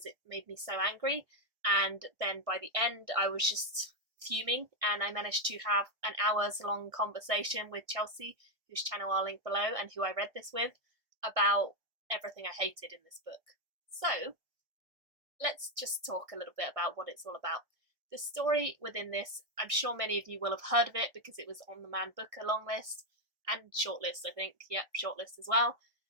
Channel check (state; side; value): late; left; 1.6 ms